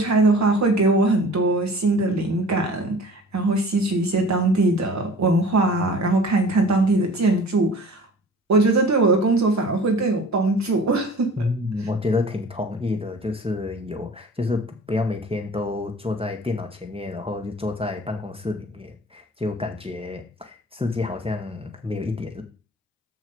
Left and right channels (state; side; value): normal; both; correlation 0.45